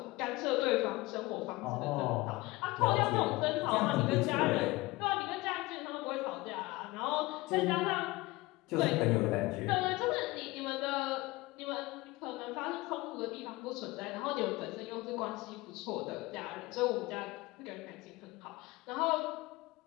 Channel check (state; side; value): quieter; right; 21.1 dB